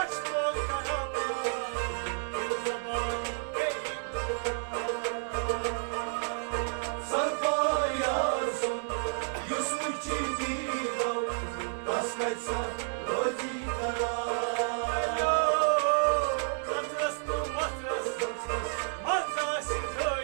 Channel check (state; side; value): silent; left; digital silence